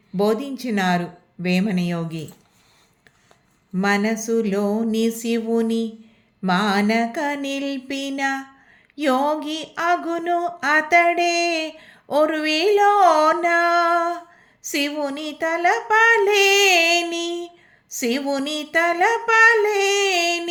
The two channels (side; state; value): both; identical; correlation 1.00